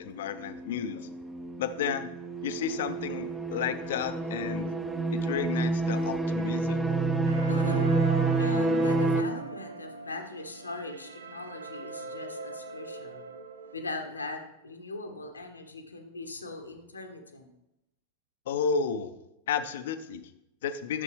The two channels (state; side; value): normal; both; correlation 0.34